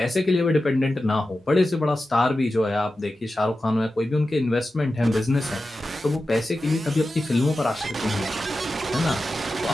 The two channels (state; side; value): normal; both; correlation 0.93